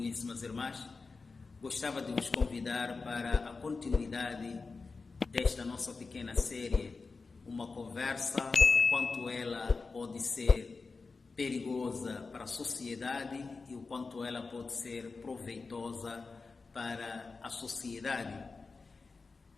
irmãs, gostava de vos convidar para a continuidade desta nossa pequena série, uma conversa, o quanto ela pode ser perigosa para a sociedade e o quanto ela pode ser proveitosa para a sociedade.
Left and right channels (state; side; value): quieter; right; 4.2 dB